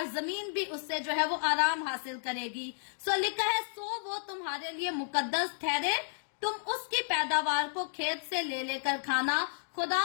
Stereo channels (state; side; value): silent; right; digital silence